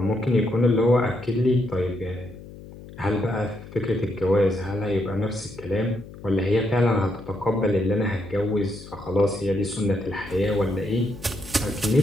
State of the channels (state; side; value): noise; left; hum, 16 dB below the sound